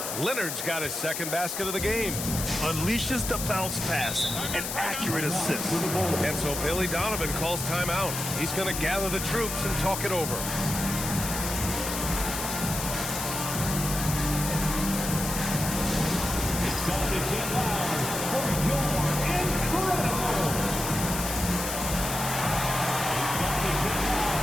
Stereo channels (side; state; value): left; noise; hiss, 4 dB below the sound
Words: Leonard's got his second basket of the game. Unleashes the bounce pass. An accurate assist. And so Billy Donovan calls timeout. He's going to gather the troops and talk it over.